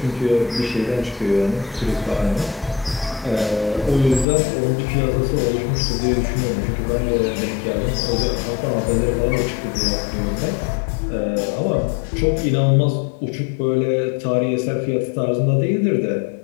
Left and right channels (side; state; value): right; drops out; at 4.2 s